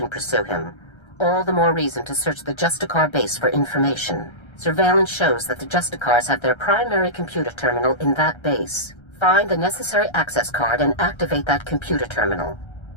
pursue him. All the more reason to search the Justicar base for information. Surveillance shows that the Justicars have their primary computer terminal in that base. Find the necessary access card and activate that computer terminal.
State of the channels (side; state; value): right; late; 1.3 ms